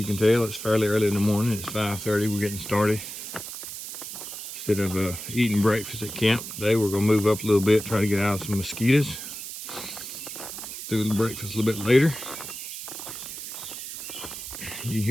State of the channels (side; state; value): right; noise; hiss, 9 dB below the sound